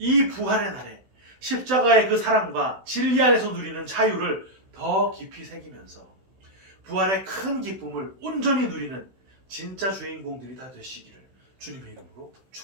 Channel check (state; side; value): late; left; 16 ms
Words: 부활의 날에 십자가의 그 사랑과 진리 안에서 누리는 자유를 더 깊이 새기면서 부활의 큰 기쁨을 온전히 누리는 진짜 주인공들이 다 되시기를 주님의 이름으로